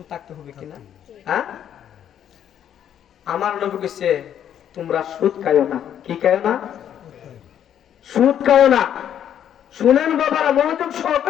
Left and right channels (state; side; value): quieter; right; 9.8 dB